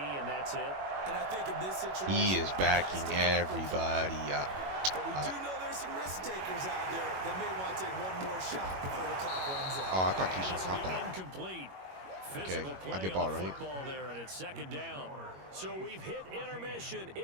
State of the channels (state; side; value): late; left; 21 ms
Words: and that's it? And I think in this situation, he is backing everybody up. But we do know there's some risk takers out there that may want to take one more shot before the clock runs out. Oh, I thought Keyshawn caught that. Incomplete. Okay, I get ball right. Football there, and it's 2nd down. So we've hit intermission.